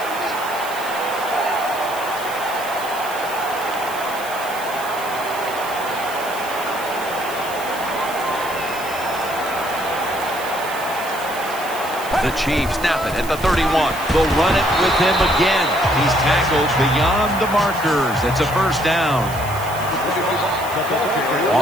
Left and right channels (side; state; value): right; noise; hiss, 14 dB below the sound